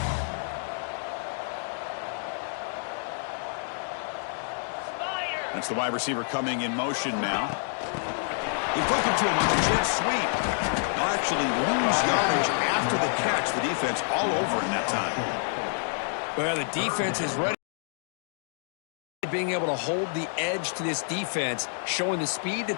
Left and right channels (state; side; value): silent; right; digital silence